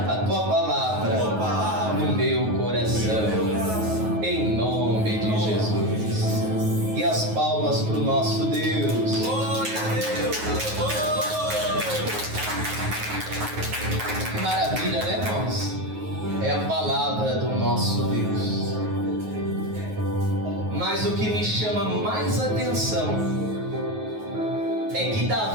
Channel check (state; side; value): late; left; 9.4 ms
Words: a tua palavra no meu coração, em nome de Jesus. E as palmas para o nosso Deus. Maravilha, né, irmãos? É a palavra do nosso Deus. Mas o que me chama mais atenção é que